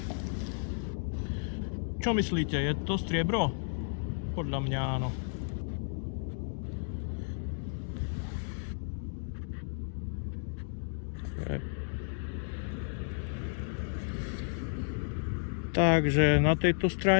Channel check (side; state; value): right; silent; digital silence